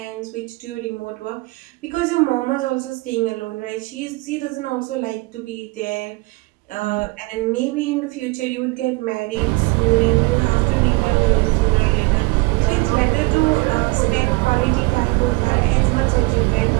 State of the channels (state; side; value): quieter; left; 24.6 dB